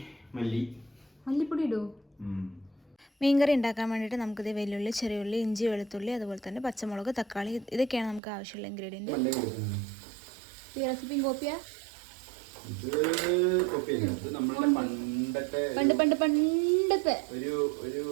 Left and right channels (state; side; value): drops out; left; at 8.2 s